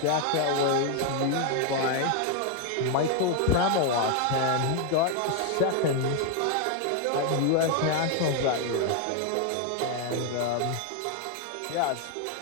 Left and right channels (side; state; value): both; different; correlation 0.01